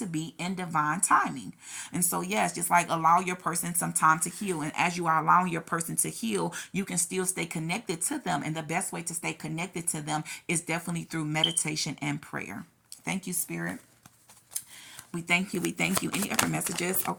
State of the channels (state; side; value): identical; both; correlation 1.00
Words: be in divine timing. And so, yes, just like allow your person some time to heal. And as you are allowing your person to heal, you can still stay connected to them. And the best way to stay connected to them is definitely through meditation and prayer. Thank you, Spirit. We thank you. We thank you. Any other messages?